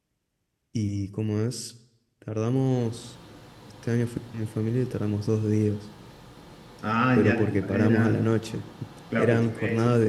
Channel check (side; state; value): both; identical; correlation 1.00